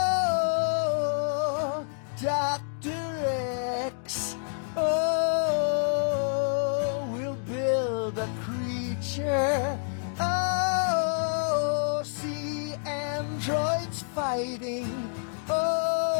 Dr. X, oh, we'll build a creature, oh, see androids fighting,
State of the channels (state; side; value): silent; right; digital silence